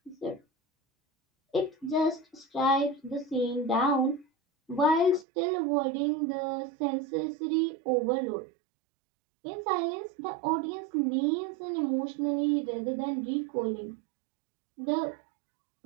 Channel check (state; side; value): drops out; left; at 5.2 s